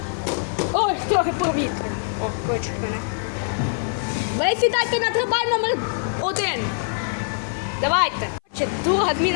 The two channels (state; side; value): silent; right; 58 dB below the other